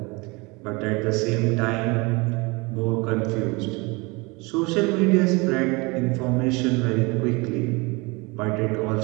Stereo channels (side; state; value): left; quieter; 26.4 dB